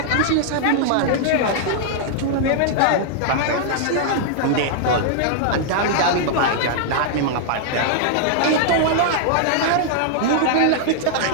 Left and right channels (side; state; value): both; different; correlation -0.01